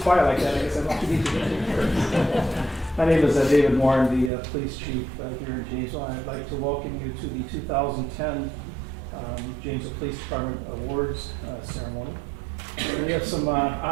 quiet like that, I guess I don't have to meet you. My name is David Moore. I'm the police chief here in Janesville. I'd like to welcome you to the 2010 Janesville Police Department Awards ceremony. We have some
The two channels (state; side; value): drops out; left; at 4.3 s